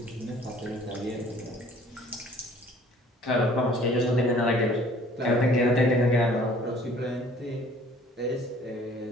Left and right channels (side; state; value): both; normal; correlation 0.53